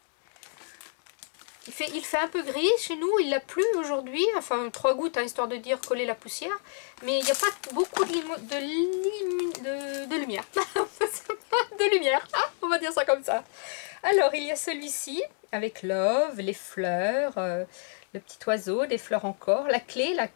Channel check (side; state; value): right; silent; 59 dB below the other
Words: Il fait un peu gris chez nous, il a plu aujourd'hui, enfin 3 gouttes, hein, histoire de dire coller la poussière, mais il n'y a pas beaucoup de lumière. De lumière, on va dire ça comme ça. Alors il y a celui-ci, avec love, les fleurs, le petit oiseau, des fleurs encore, la clé là